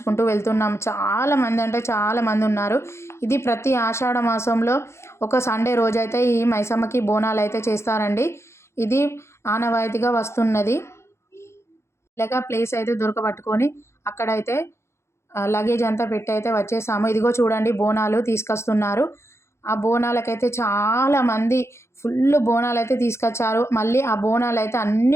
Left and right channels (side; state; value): right; late; 0.13 ms